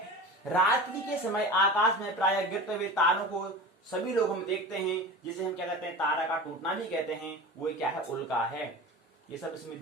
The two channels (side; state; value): both; normal; correlation 0.32